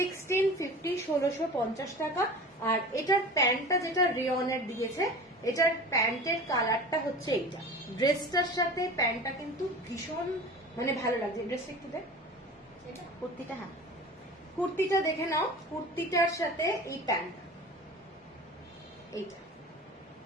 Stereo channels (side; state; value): both; normal; correlation 0.37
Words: টাকা। আর এটার প্যান্টটা যেটা রেয়নের দিয়েছে, এটার প্যান্টের কালারটা হচ্ছে এইটা, ড্রেসটার সাথে প্যান্টটা কিন্তু ভীষণ মানে ভালো লাগছে। ড্রেসটা একটু দেখ, কুর্তিটা, হ্যাঁ কুর্তিটা দেখে নাও, কুর্তিটার সাথে এই প্যান্টটা, এইটা